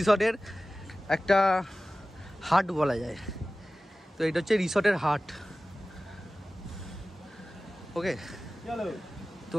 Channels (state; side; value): normal; both; correlation 0.97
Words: একটা হাট বলা যায়। তো এটা হচ্ছে রিসর্টের হাট। ওকে, তো